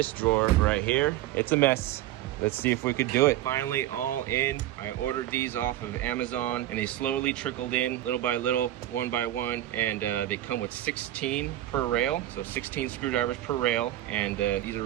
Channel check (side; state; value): left; quieter; 13.8 dB